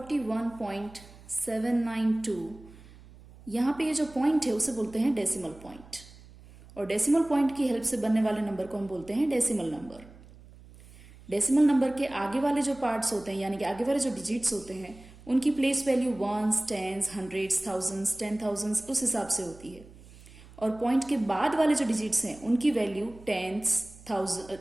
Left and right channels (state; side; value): noise; right; hum, 21 dB below the sound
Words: यहाँ पे ये जो पॉइंट है उसे बोलते हैं डेसिमल पॉइंट, और डेसिमल पॉइंट की हेल्प से बनने वाले नंबर को हम बोलते हैं डेसिमल नंबर। डेसिमल नंबर के आगे वाले जो पार्ट्स होते हैं यानी कि आगे वाले जो डिजिट्स होते हैं उनकी place value ones, tens, hundreds, thousands, 10,000 उस हिसाब से होती है, और पॉइंट के बाद वाले जो डिजिट्स हैं उनकी वैल्यू टेंस,